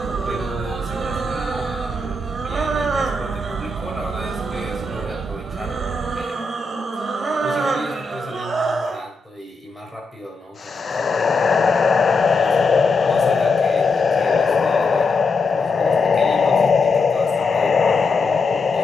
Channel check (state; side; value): quieter; right; 3.3 dB